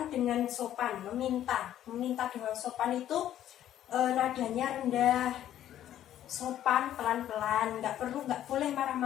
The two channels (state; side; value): quieter; right; 11.7 dB